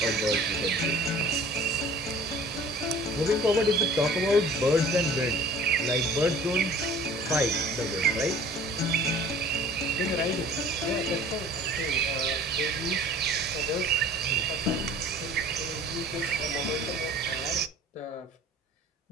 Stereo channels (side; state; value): both; normal; correlation 0.48